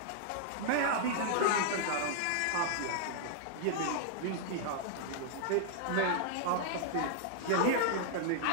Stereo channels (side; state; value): both; different; correlation -0.01